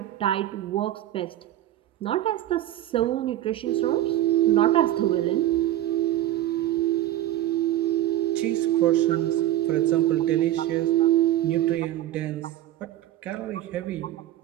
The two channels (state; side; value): quieter; left; 13.4 dB